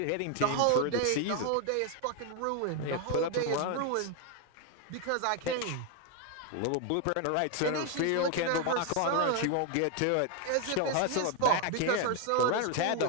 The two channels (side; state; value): both; different; correlation 0.01